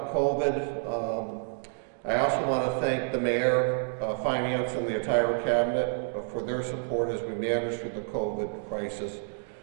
COVID. I also want to thank the Mayor, Finance, and the entire Cabinet for their support as we manage through the COVID crisis.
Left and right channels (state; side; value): silent; left; digital silence